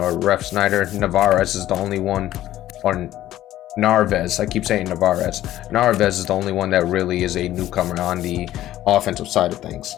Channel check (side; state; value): right; quieter; 13.6 dB